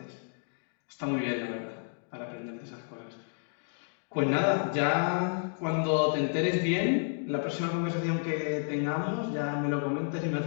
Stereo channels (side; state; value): right; silent; digital silence